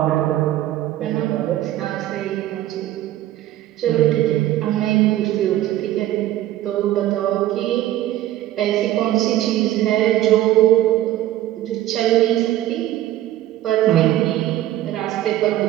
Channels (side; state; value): left; quieter; 14.0 dB